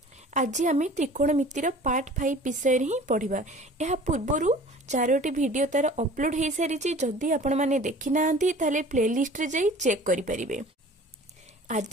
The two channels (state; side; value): normal; both; correlation 0.45